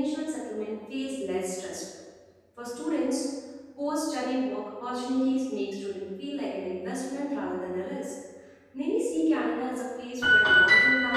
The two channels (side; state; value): both; identical; correlation 1.00